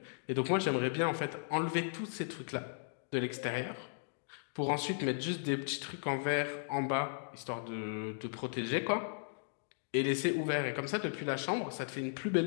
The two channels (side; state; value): right; silent; digital silence